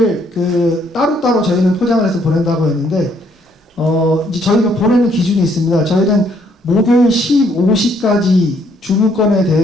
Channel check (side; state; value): both; normal; correlation 0.68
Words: 그 따로따로 저희는 포장을 해서 보낸다고 했는데 이제 저희가 보내는 기준이 있습니다. 저희는 목요일 15시까지 주문건에